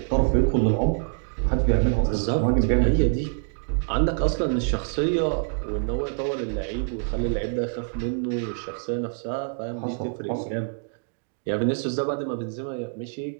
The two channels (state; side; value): silent; left; digital silence